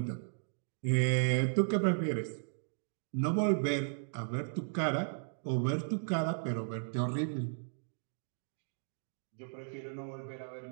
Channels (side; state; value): left; silent; digital silence